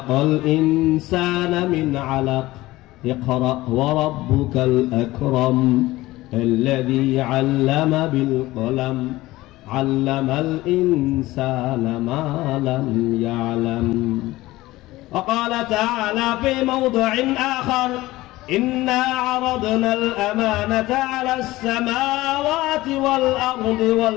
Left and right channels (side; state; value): right; quieter; 18.2 dB